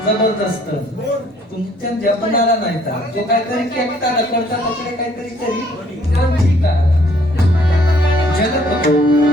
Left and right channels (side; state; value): both; normal; correlation 0.62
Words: जबरदस्त तुमच्या जपणाला नाही तर तो काहीतरी केकता ढकलता तसले काहीतरी तरी पण ठीक आहे.